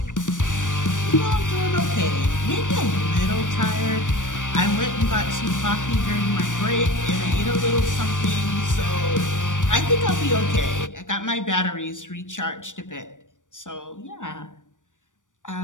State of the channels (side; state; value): right; late; 0.87 ms